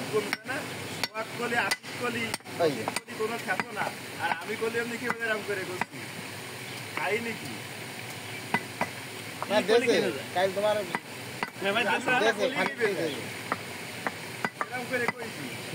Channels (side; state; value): both; identical; correlation 1.00